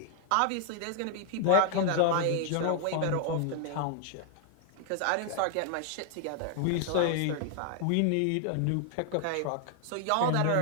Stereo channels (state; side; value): different; both; correlation 0.00